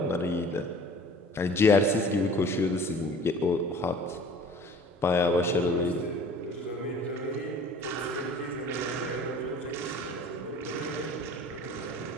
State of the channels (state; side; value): normal; both; correlation 0.46